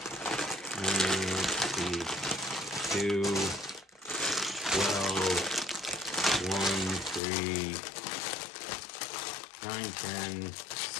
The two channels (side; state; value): right; drops out; at 7.2 s